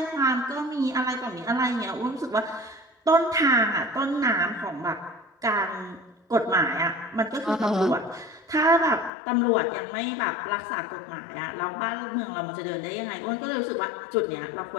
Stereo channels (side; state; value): right; drops out; at 9.1 s